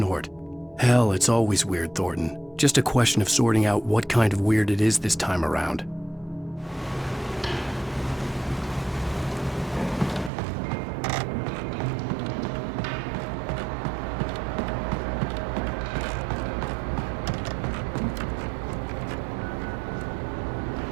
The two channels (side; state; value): left; drops out; at 10.3 s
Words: Hell, it's always weird, Thornton. Just a question of sorting out what kind of weird it is this time around.